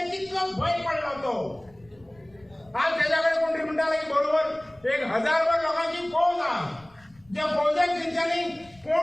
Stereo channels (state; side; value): noise; left; rumble, 29 dB below the sound